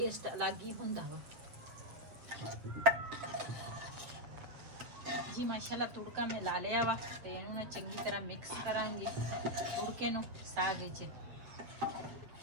अलग ही हुंदा वा। जी माशाल्लाह तुड़का मैं ला लिया वा ते इहनूं ना चंगी तरह मिक्स करांगे तुड़के नूं साग विच।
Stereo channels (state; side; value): late; left; 7.7 ms